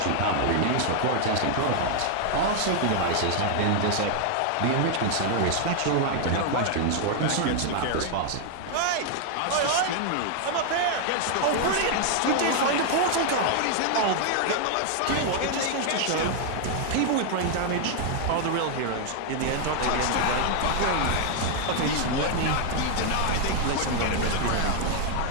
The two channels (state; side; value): different; both; correlation 0.00